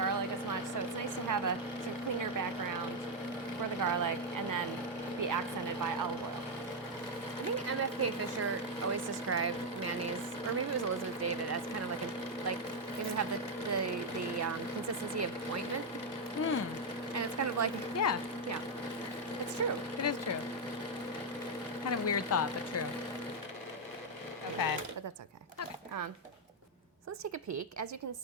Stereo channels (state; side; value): normal; both; correlation 0.01